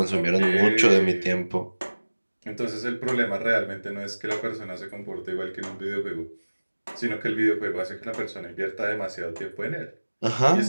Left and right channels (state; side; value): inverted; both; correlation -1.00